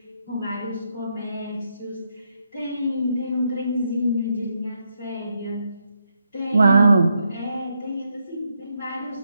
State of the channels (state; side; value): inverted; both; correlation -0.80